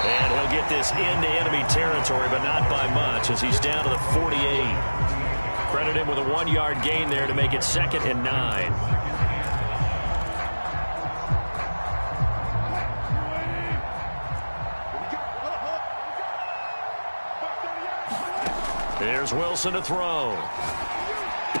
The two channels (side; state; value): both; inverted; correlation -1.00